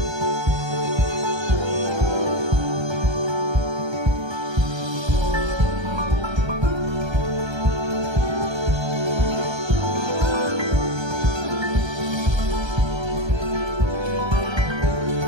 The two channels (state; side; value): late; left; 1.3 ms